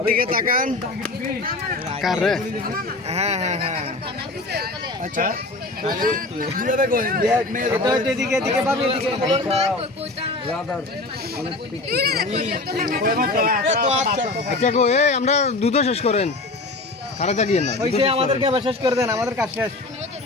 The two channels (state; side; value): quieter; right; 3.1 dB